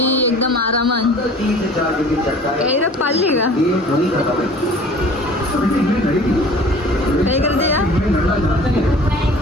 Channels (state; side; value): normal; both; correlation 0.46